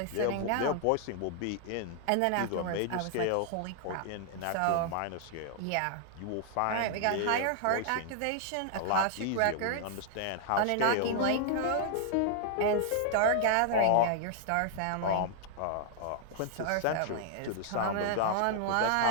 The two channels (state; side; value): different; both; correlation -0.01